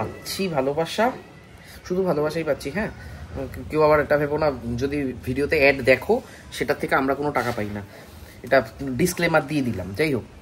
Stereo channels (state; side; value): identical; both; correlation 1.00